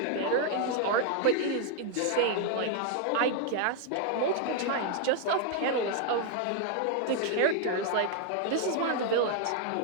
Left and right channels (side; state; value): both; different; correlation 0.00